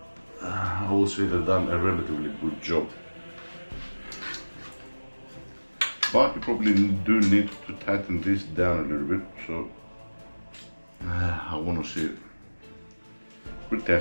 I would say they've done a relatively good job. But you probably do need to tighten this down a little bit, so I want to see it. We're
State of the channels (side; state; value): both; inverted; correlation -1.00